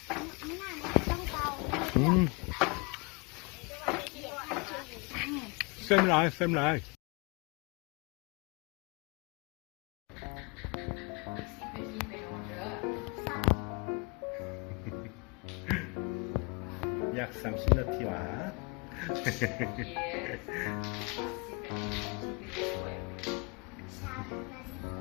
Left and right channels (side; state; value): right; quieter; 30.7 dB